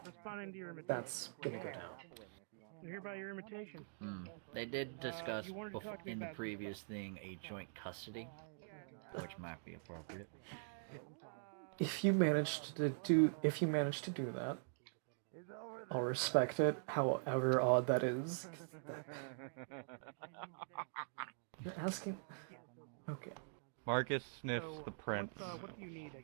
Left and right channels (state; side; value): silent; left; digital silence